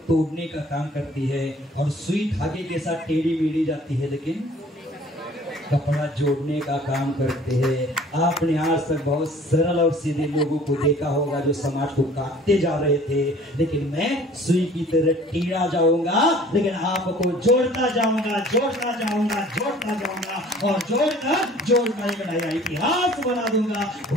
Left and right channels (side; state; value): both; normal; correlation 0.51